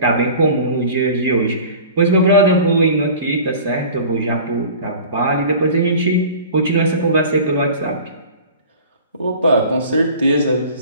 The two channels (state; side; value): inverted; both; correlation -0.41